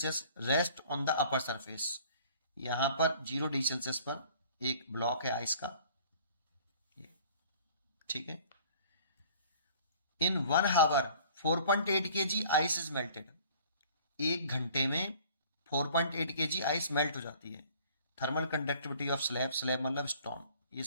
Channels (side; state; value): both; inverted; correlation -0.51